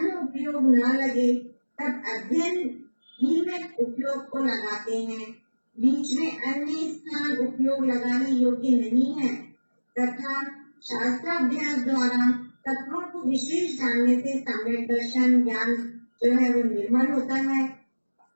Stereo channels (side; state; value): both; inverted; correlation -1.00